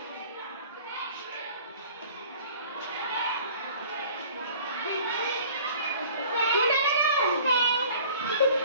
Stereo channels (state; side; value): inverted; both; correlation -0.49